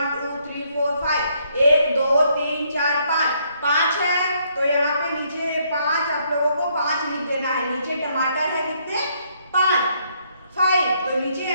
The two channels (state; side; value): inverted; both; correlation -0.71